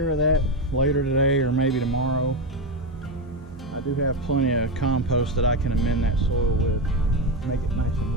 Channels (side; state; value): both; normal; correlation 0.12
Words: of that later today or maybe tomorrow. I do have plenty of compost that I can amend that soil with, make it nice